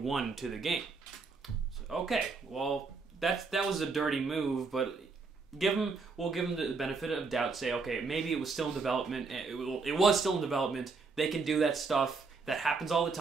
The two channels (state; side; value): quieter; left; 4.4 dB